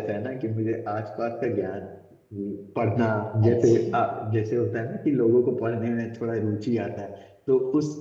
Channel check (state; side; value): identical; both; correlation 1.00